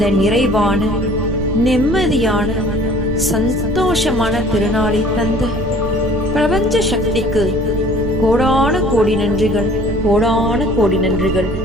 நிறைவான, நிம்மதியான, சந்தோஷமான திருநாளை தந்த பிரபஞ்ச சக்திக்கு கோடான கோடி நன்றிகள், கோடான கோடி நன்றிகள்,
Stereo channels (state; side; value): noise; right; rumble, 6 dB below the sound